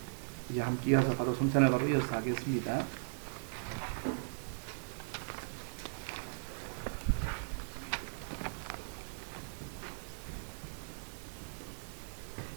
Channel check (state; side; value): silent; left; digital silence